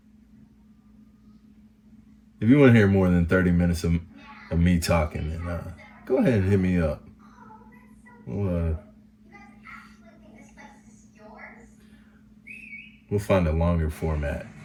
if you want to hear more than 30 minutes of me talking, then go ahead and hit me up. We'll find a longer format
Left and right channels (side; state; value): both; identical; correlation 1.00